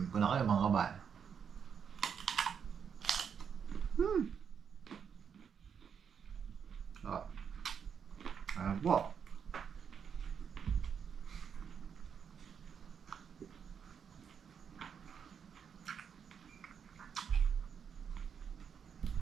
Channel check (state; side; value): quieter; left; 7.2 dB